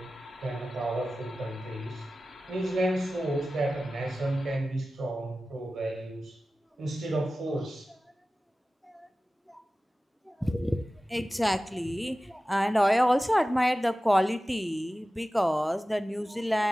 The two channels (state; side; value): normal; both; correlation 0.95